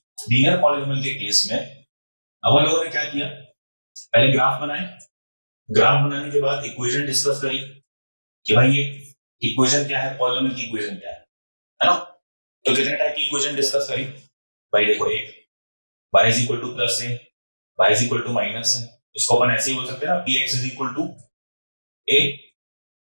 लीनियर पॉलीनोमियल के केस में अपन लोगों ने क्या किया, पहले ग्राफ बनाए, ग्राफ बनाने के बाद इक्वेशन डिस्कस करी कि भाई ये इक्वेशन क्या है, पॉलीनोमियल की इक्वेशन क्या है ना। तो कितने टाइप की इक्वेशन डिस्कस करी भाई? देखो, एक y is equal to plus है, y is equal to minus है, इसको अपन ऐसे ही बोल सकते हैं ना, px is equal to a,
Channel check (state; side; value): inverted; both; correlation -1.00